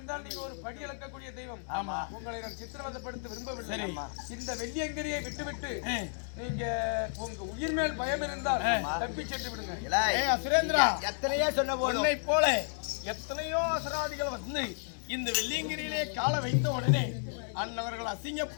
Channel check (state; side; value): silent; right; 56 dB below the other